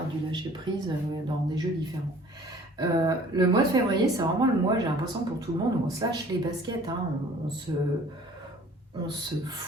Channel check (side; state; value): both; normal; correlation 0.51